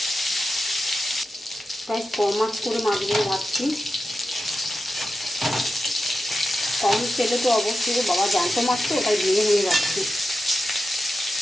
গাইস কম মাছ করে মাছগুলো ভাজছি, কম তেলে তো অবশ্যই। বাবা জ্যান্ত মাছ তো, ওটাই ভেঙে ভেঙে যাচ্ছে।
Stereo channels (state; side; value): normal; both; correlation 0.91